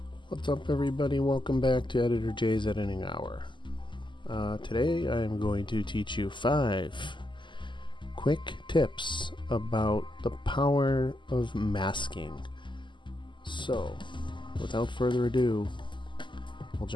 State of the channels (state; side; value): late; right; 0.23 ms